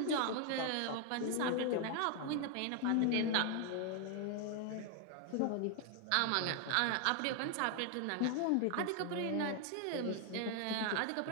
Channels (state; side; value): different; both; correlation 0.00